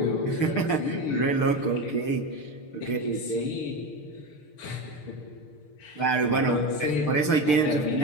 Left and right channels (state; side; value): late; right; 6.7 ms